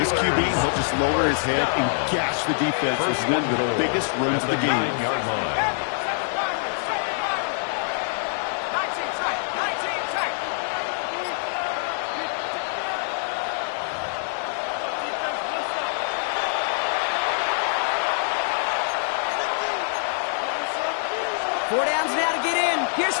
QB, he'll just lower his head and gash the defense with one of the biggest runs of the game. 4 downs now to get in. Here's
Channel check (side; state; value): right; silent; digital silence